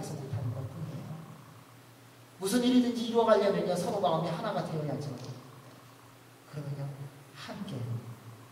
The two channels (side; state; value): both; identical; correlation 1.00